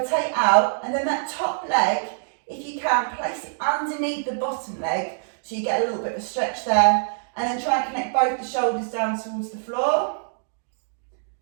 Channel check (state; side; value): silent; left; digital silence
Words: out, and then that top leg, if you can, place it underneath the bottom leg so you get a little bit of a stretch there, and then try and connect both the shoulders down towards the floor.